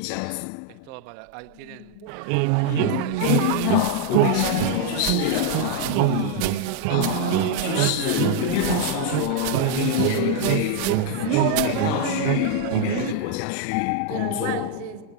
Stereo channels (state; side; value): different; both; correlation 0.00